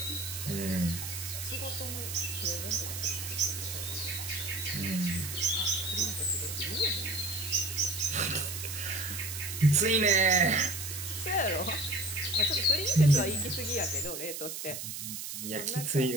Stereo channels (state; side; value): noise; right; hiss, 6 dB below the sound